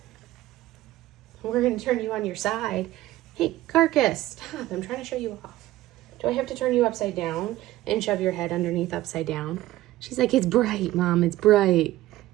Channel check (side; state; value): left; quieter; 15.9 dB